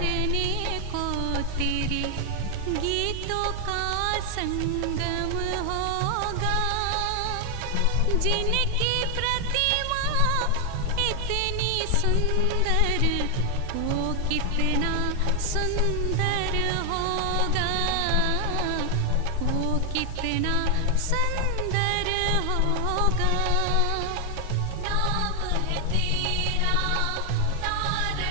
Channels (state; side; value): different; both; correlation 0.00